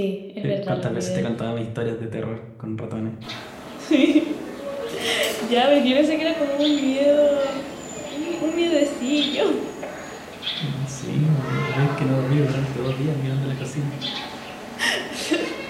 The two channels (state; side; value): identical; both; correlation 1.00